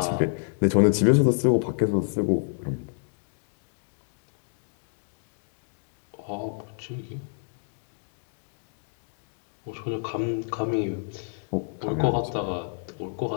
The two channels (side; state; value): right; silent; digital silence